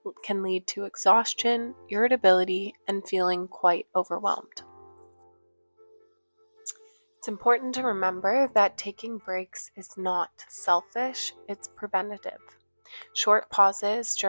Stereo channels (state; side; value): inverted; both; correlation -1.00